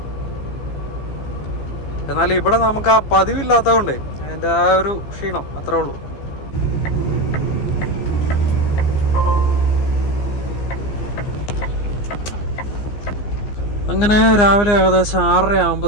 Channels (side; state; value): right; late; 15 ms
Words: എന്നാൽ ഇവിടെ നമുക്ക് ആ പതിവില്ലാത്തതുകൊണ്ട് അതിൻ്റെ ആ ഒരു ക്ഷീണം അത്രേ ഉള്ളൂ. അങ്ങനെ രാവിലെ ഏകദേശം 6:30